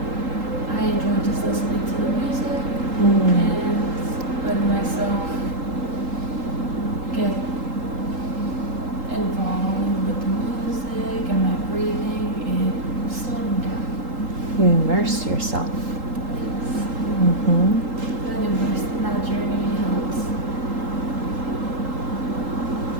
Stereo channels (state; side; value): late; left; 3.8 ms